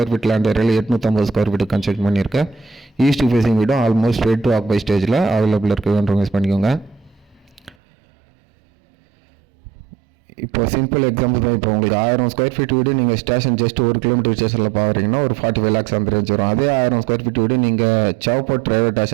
ஃபீட் லேண்ட் ஏரியாவில் 850 ஸ்கொயர் ஃபீட் கன்ஸ்ட்ரக்ட் பண்ணியிருக்கேன். ஈஸ்ட் ஃபேஸிங் வீடும் ஆல்மோஸ்ட் ரெடி டு ஆக்குபை ஸ்டேஜில் அவைலபிள் இருக்குன்றவங்க யூஸ் பண்ணிக்கோங்க. இப்போ சிம்பிள் எக்ஸாம்பிள் தான். இப்போ உங்களுக்கு 1000 ஸ்கொயர் ஃபீட் வீடு நீங்கள் ஸ்டேஷன் ஜஸ்ட் 1 கிலோமீட்டர் ஸ்டேஷனில் பார்க்குறீங்கன்னா ஒரு 45 lakhs அந்த ரேஞ்ச் வரும். அதே 1000 ஸ்கொயர் ஃபீட் வீடு நீங்கள் சேவப்பாட் ரயில்வே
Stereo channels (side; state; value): left; drops out; at 7.8 s